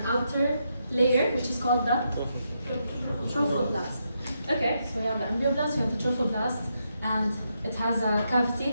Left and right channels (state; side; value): inverted; both; correlation -0.81